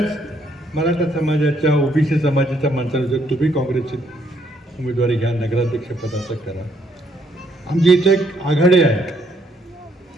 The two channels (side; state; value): both; normal; correlation 0.71